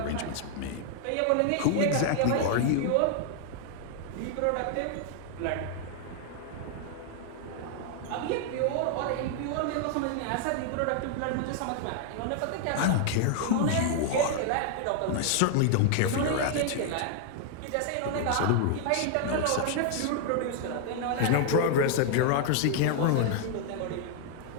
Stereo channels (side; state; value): both; different; correlation 0.00